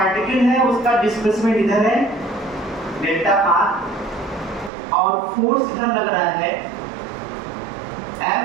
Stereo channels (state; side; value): drops out; left; at 4.7 s